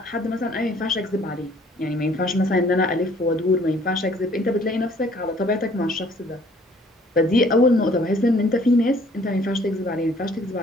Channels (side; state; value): both; normal; correlation 0.58